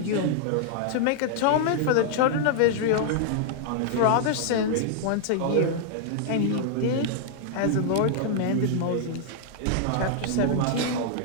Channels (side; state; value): both; different; correlation -0.01